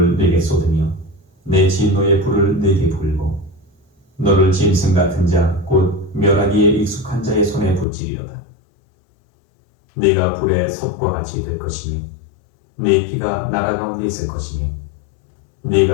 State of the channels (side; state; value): right; drops out; at 7.9 s